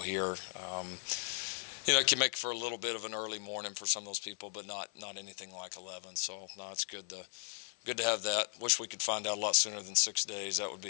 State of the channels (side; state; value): right; silent; 53 dB below the other